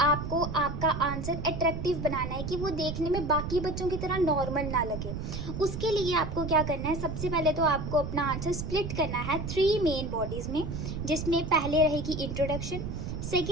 आपको आपका आंसर अट्रैक्टिव बनाना है कि वो देखने में बाकी बच्चों की तरह नॉर्मल ना लगे। उसके लिए आपको क्या करना है? सबसे पहले तो आपको अपना आंसर स्प्लिट करना है 3 मेन बॉडीज़ में, जिसमें पहले रहेगी इंट्रोडक्शन,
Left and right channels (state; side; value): noise; right; rumble, 5 dB below the sound